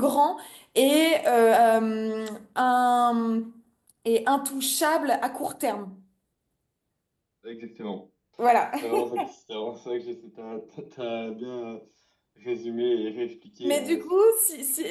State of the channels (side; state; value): both; identical; correlation 1.00